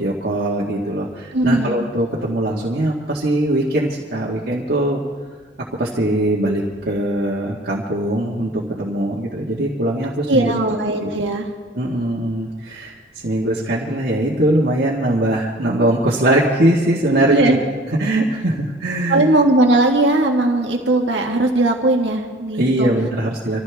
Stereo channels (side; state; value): both; normal; correlation 0.48